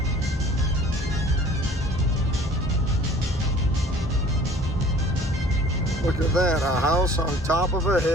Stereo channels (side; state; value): both; normal; correlation 0.50